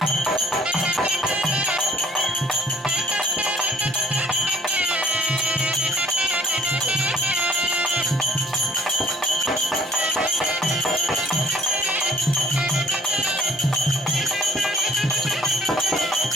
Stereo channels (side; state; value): both; normal; correlation 0.56